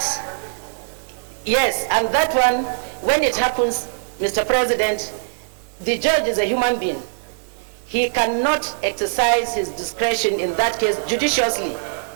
yes, and that one, when it happens, Mr. President, the judge is a human being. He cannot exercise his discretion in that case judiciously.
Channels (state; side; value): silent; left; digital silence